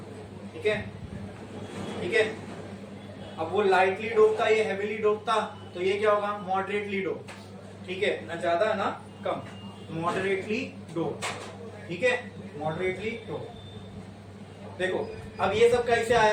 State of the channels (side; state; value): both; identical; correlation 1.00